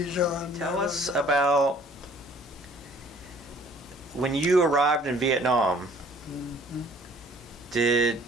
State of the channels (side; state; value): both; normal; correlation 0.55